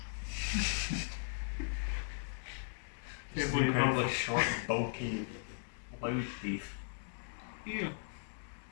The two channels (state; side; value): silent; right; digital silence